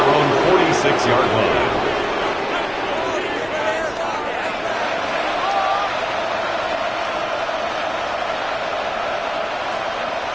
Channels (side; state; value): right; noise; rumble, 24 dB below the sound